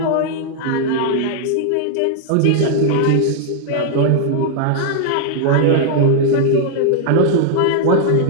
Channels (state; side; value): different; both; correlation 0.00